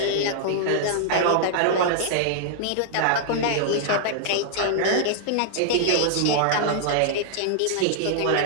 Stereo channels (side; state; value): both; different; correlation -0.01